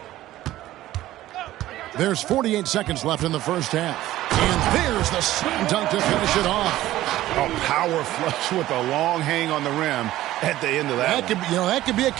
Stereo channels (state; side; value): quieter; left; 14.9 dB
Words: There's 48 seconds left in the first half. And there's the slam dunk to finish it off. A power flush with a long hang on the rim at the end of that. That could be a